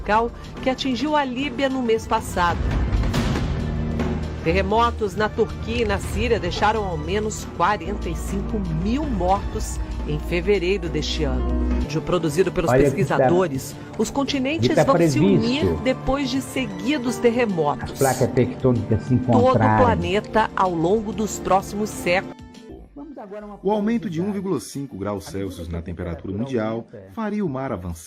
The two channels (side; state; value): both; identical; correlation 1.00